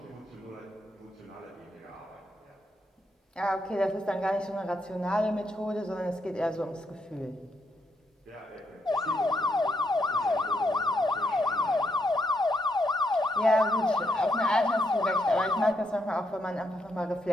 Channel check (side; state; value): both; normal; correlation 0.77